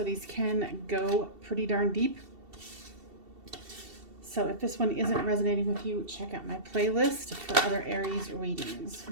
these can go pretty darn deep. So if this one isn't resonating with you, check out my playlist for other Aries readings.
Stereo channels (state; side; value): late; left; 2.7 ms